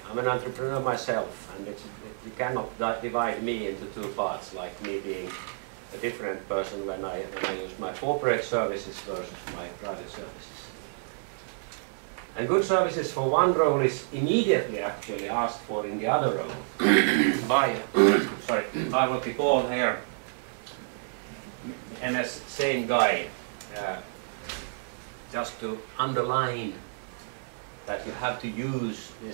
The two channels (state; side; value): silent; left; 58 dB below the other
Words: I'm an entrepreneur myself, and you cannot divide me into two parts, like me being a different person when I use my corporate services versus my private services. And good services for one role is immediately actually asked for in the other role by what we call here MS same guy, just to underline that you have to use